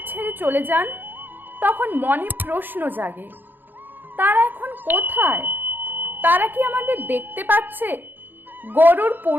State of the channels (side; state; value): left; late; 0.093 ms